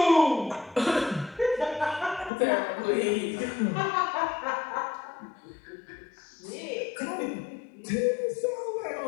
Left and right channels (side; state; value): right; drops out; at 2.3 s